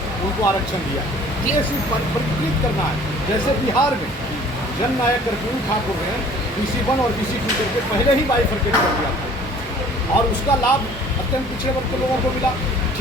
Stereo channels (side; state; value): both; normal; correlation 0.51